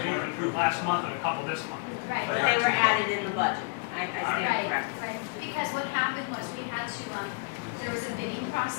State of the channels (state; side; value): quieter; right; 32.4 dB